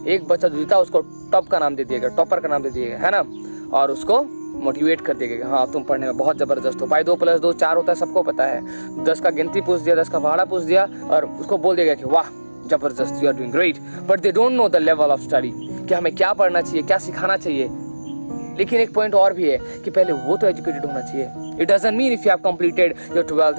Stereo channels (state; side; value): inverted; both; correlation -1.00